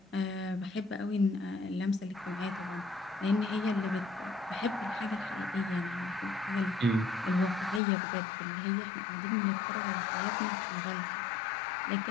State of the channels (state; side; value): drops out; right; at 7.8 s